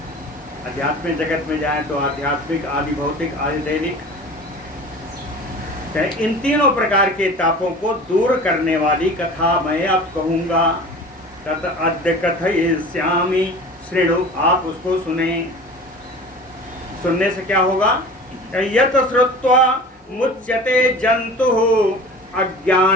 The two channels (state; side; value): normal; both; correlation 0.39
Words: आध्यात्मिक जगत में जाएं तो आध्यात्मिक, आदि भौतिक, आदि दैविक, इन तीनों प्रकार के तापों को दूर करने वाली कथा मैं अब कहूंगा। तत् अद्य कथयिष्यामि शृणु, आप उसको सुने। सुनने से क्या होगा? यत् श्रुत्वा मुच्यते जंतुः